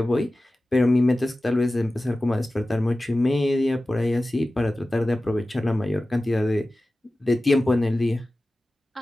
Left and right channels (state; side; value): normal; both; correlation 0.95